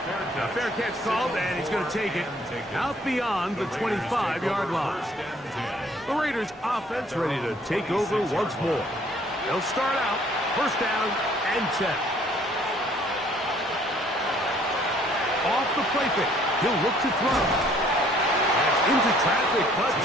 Now, fair catch called, and he's going to take it out beyond the 25-yard line. The Raiders offense ready to take over once more. They'll start out first down and 10. Off the play fake, he'll look to throw. Into traffic, but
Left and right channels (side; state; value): both; normal; correlation 0.60